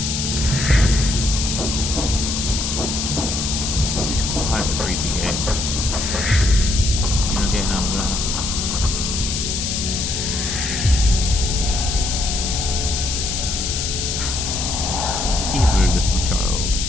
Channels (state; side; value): noise; left; hiss, 2 dB below the sound